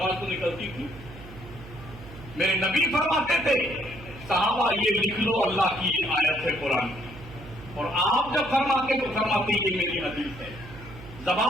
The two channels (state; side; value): noise; right; hum, 16 dB below the sound